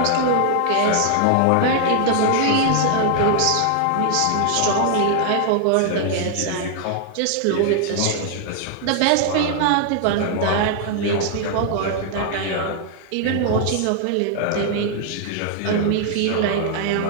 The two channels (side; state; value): both; different; correlation 0.00